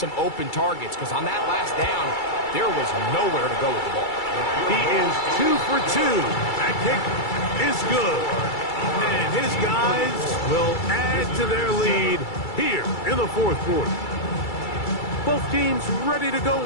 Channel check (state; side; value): late; right; 2.3 ms